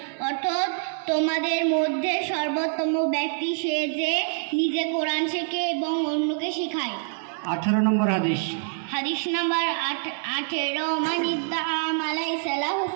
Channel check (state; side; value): silent; left; 61 dB below the other